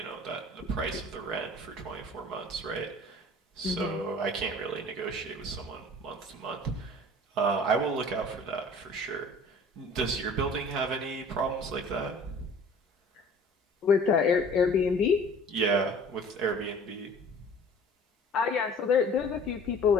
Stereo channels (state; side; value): normal; both; correlation 0.47